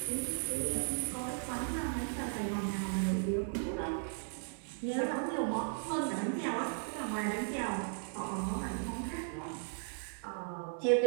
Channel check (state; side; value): silent; left; digital silence